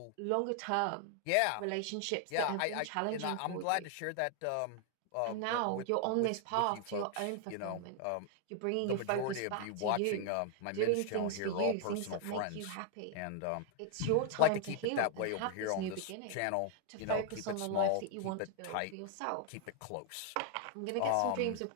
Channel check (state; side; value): different; both; correlation 0.00